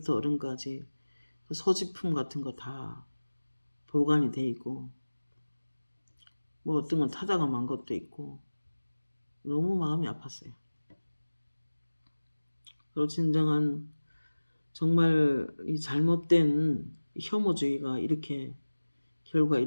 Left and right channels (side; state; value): both; inverted; correlation -1.00